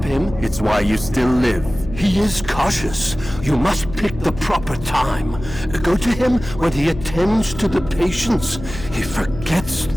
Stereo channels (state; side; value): noise; left; hum, 12 dB below the sound